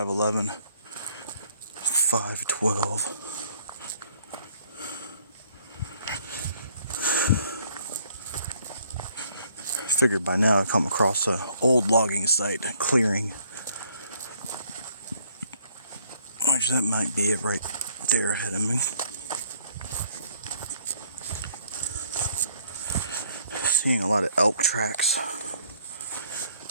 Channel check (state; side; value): inverted; both; correlation -0.63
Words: 5:12. Figured by now I'd come across an old logging site, clearing. Which that might be it right there ahead of me. Seeing a lot of elk tracks.